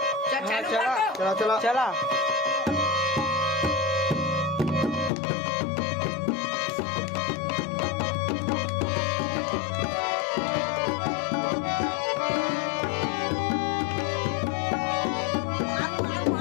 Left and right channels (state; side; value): drops out; right; at 5.1 s